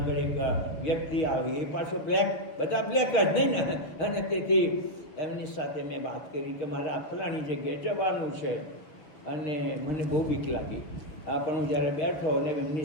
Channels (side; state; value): right; late; 6.7 ms